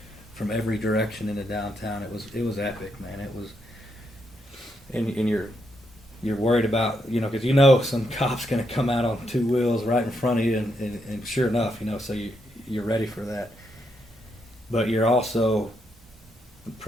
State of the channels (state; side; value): normal; both; correlation 0.79